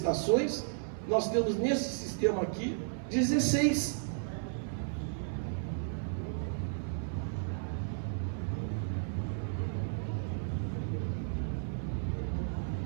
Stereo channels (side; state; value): left; silent; 55 dB below the other